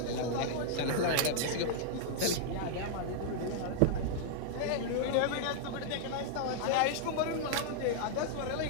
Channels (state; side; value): different; both; correlation -0.01